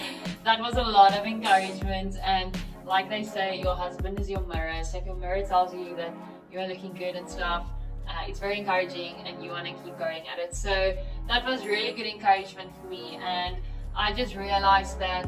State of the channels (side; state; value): both; identical; correlation 1.00